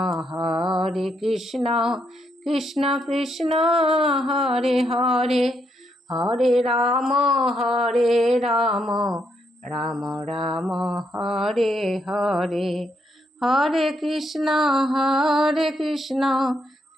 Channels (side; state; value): both; normal; correlation 0.77